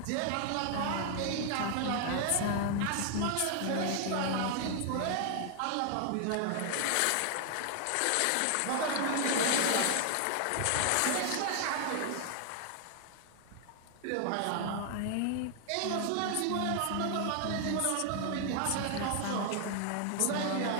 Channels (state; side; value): different; both; correlation 0.00